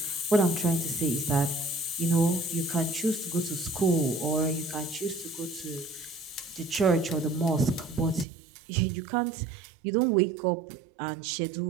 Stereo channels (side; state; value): left; drops out; at 8.2 s